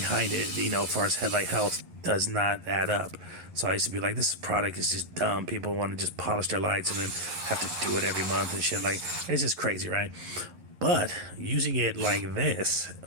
it, as far as headlight health, does not add up. So I used to be like, this product is just dumb. People want to just polish their lights and then have to do it every month and shit. Like, it's just crazy, right? But using it like this,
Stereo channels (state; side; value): late; left; 11 ms